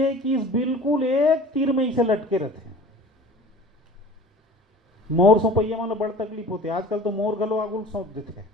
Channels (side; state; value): both; normal; correlation 0.43